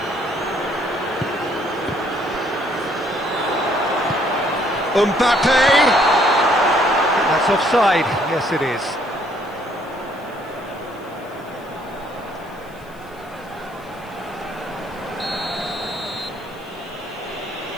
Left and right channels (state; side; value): noise; left; hiss, 27 dB below the sound